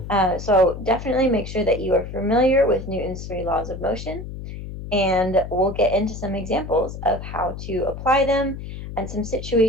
So definitely make sure that you are familiar with Newton's three laws of motion, and we'll get into some examples of how to apply them and some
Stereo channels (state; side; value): noise; left; hum, 9 dB below the sound